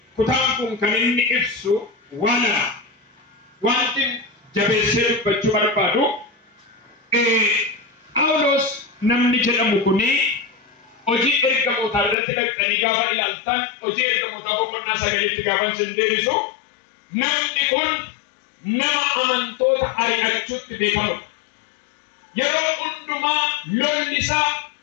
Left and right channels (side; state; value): right; drops out; at 12.2 s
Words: ኩታንኩን ከነኒ ኢብሱ ዋና ዋንቲ ጀቤሰር በቹ በርባዱ ጳውሎስ ነምኒ ጀደሙ ኩኒ Oji ergamoota irratti dhaqanii gaafa ilaaltan hojii ergamoota boqonnaa 9tti gaafa sindeerisu namni kun nama amantoota ari'achuutti beekamudha. Yeroo hundumaa lolli isaa